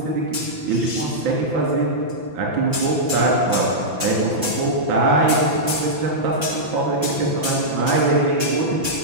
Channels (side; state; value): left; late; 5.9 ms